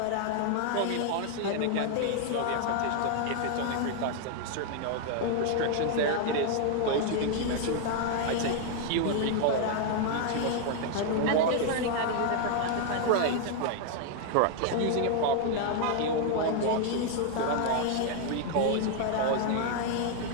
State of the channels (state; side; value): different; both; correlation 0.00